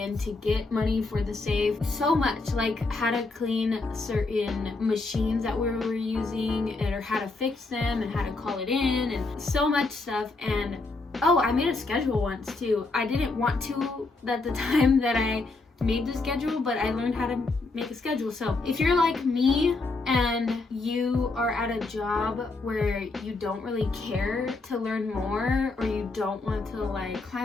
to get money for the safe. So much, like how to clean certain machines that we were using, or how to fix them, and how to call it in, and so much stuff. And oh, I made a schedule once too. I didn't want to at the time that I made the schedule, but I learned how to make a schedule. So if you're like me and you are at a job where you don't really care to learn more, or you don't want to like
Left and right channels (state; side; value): quieter; right; 3.5 dB